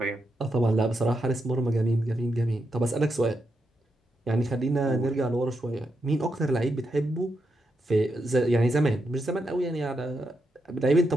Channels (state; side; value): normal; both; correlation 0.83